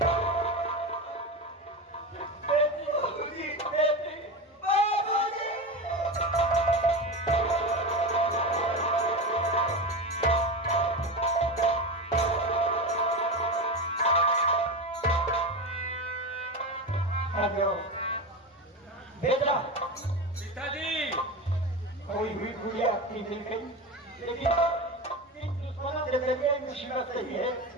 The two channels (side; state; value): both; normal; correlation 0.21